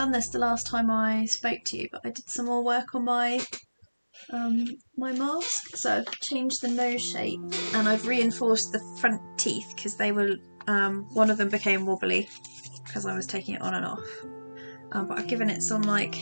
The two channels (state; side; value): inverted; both; correlation -1.00